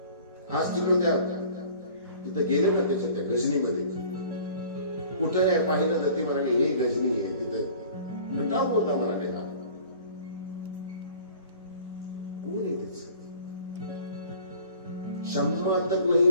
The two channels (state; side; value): inverted; both; correlation -0.48